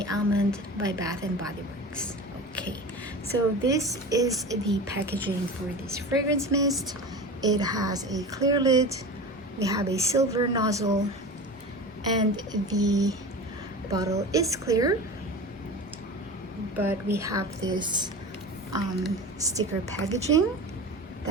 Almond by Bath and Body Works. Okay, so this is the packaging for this fragrance mist. It has a clear lid. We have a silver nozzle and the bottle is clear, but we have this sticker packaging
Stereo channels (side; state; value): both; normal; correlation 0.32